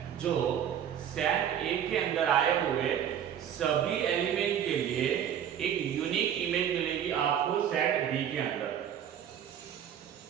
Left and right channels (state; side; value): quieter; left; 9.4 dB